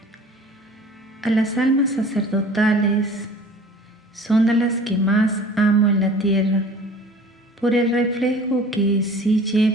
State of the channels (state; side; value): normal; both; correlation 0.46